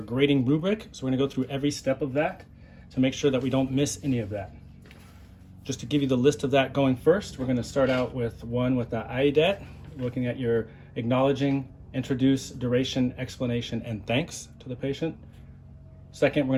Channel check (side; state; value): both; identical; correlation 1.00